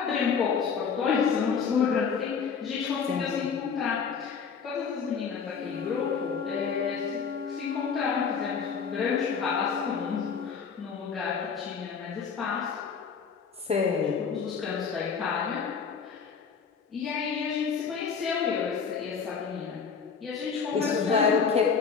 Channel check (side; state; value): right; quieter; 6.1 dB